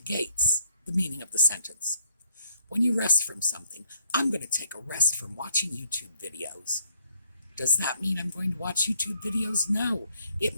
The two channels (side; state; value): both; inverted; correlation -0.70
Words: the meaning of the sentence. When you rest from something, I'm going to take a rest from watching YouTube videos. Does that mean I'm going to watch YouTube videos? No.